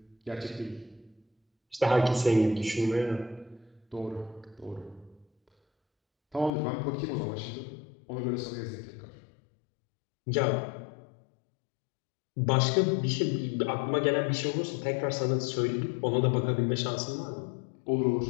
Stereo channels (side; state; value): right; drops out; at 6.5 s